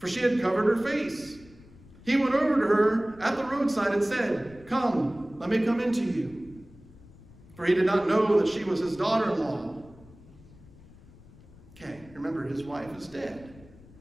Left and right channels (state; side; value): noise; left; rumble, 22 dB below the sound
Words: she had covered her face. He went over to her at the roadside and said, come, let me come into you. For he did not know that she was his daughter-in-law. Okay, remember, his wife is dead.